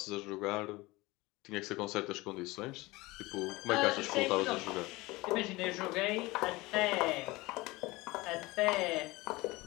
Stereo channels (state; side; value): quieter; right; 21.5 dB